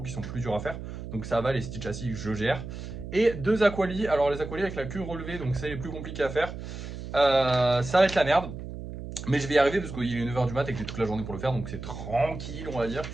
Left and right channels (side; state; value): right; noise; hum, 9 dB below the sound